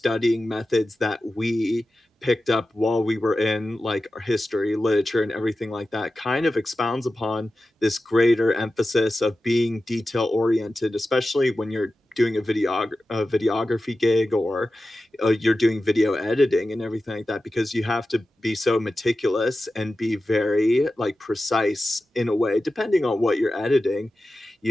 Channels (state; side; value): normal; both; correlation 0.94